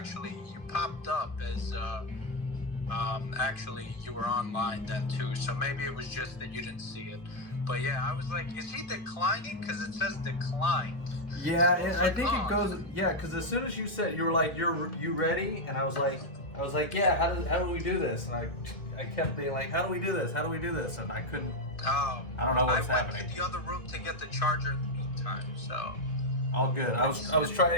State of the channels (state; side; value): late; right; 2.1 ms